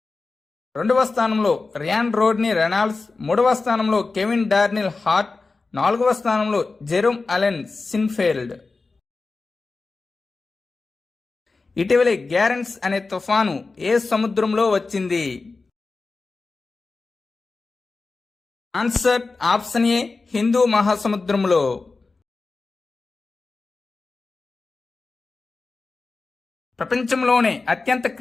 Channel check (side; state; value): right; quieter; 3.9 dB